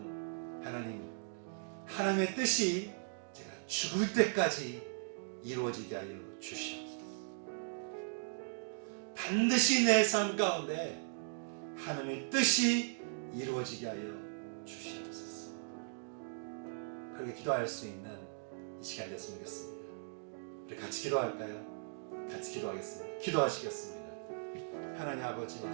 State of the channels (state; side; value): silent; left; digital silence